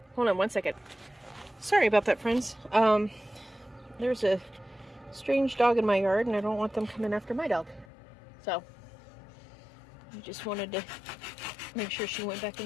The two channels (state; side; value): drops out; right; at 7.9 s